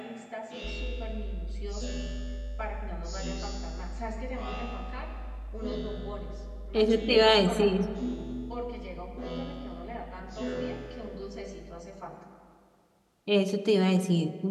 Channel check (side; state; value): both; identical; correlation 1.00